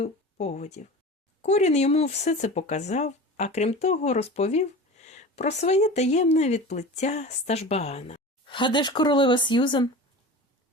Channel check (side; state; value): both; normal; correlation 0.34